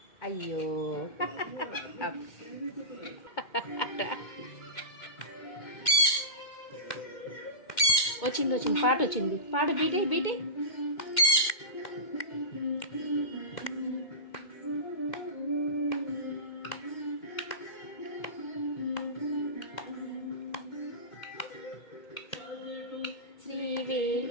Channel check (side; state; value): right; late; 2.1 ms